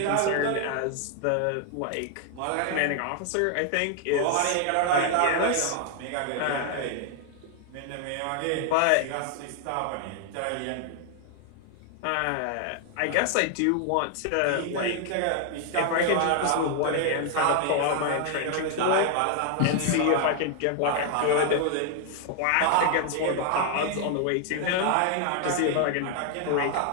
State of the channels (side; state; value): both; different; correlation 0.00